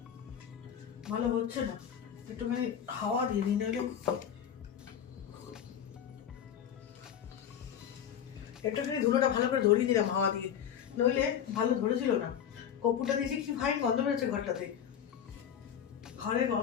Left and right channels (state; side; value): quieter; right; 9.0 dB